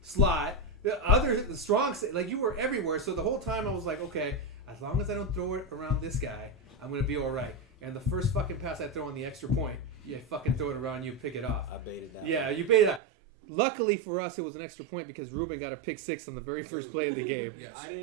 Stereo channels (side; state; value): left; drops out; at 13.0 s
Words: slot, the strong, like you were everywhere. So the whole time I was like, okay, as long as I don't throw it around this guy, I'm gonna be all right. And the first fucking pass I throw on the extra point, you fucking throw it around, you pick it off. I baited that. Yeah, you baited that. Luckily for us, it was an extra point because Ruben got a pick 6 on the very first play of the game. Yes. I